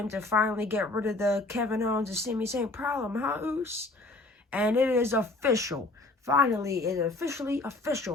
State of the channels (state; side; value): quieter; right; 3.0 dB